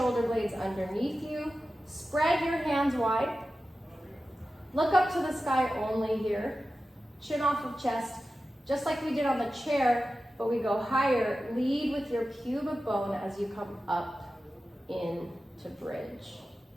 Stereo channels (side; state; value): both; normal; correlation 0.93